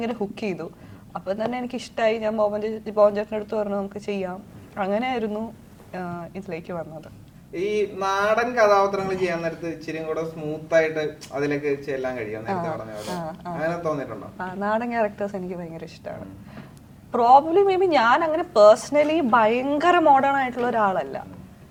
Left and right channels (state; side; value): identical; both; correlation 1.00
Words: ഹുക്ക് ചെയ്തു. അപ്പൊ തന്നെ എനിക്ക് ഇഷ്ടമായി. ഞാൻ ബോബൻ ചേട്ടൻ്റെ അടുത്ത് പറഞ്ഞു നമുക്ക് ചെയ്യാം. അങ്ങനെയായിരുന്നു ഇതിലേക്ക് വന്നത്. ഈ നാടൻ കഥാപാത്രങ്ങൾ ചെയ്യാൻ നേരത്ത് ഇച്ചിരി കൂടെ സ്മൂത്ത് ആയിട്ട് അതിലേക്ക് ചെല്ലാൻ കഴിയും നേരത്തെ പറഞ്ഞ പോലെ അങ്ങനെ തോന്നിയിട്ടുണ്ടോ? നാടൻ ക്യാരക്ടേഴ്സ് എനിക്ക് ഭയങ്കര ഇഷ്ടമാണ്. പ്രോബ്ലി മേ ബി ഞാൻ അങ്ങനെ പേഴ്സണലി ഭയങ്കര മോഡേൺ ആയിട്ടുള്ള ഒരാളല്ല.